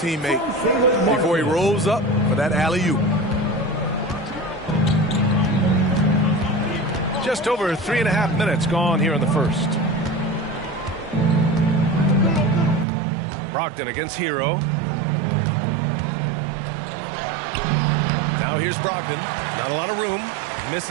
before he rolls up for that alley-oop. Just over 3.5 minutes gone here in the first. Brogdon against Hero. Now here's Brogdon. Not a lot of room.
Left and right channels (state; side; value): drops out; left; at 12.9 s